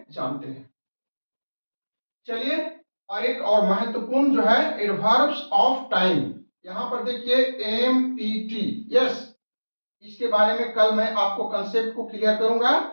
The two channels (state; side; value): inverted; both; correlation -1.00